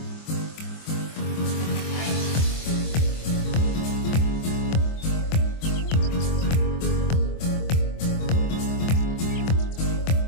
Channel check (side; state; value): right; late; 24 ms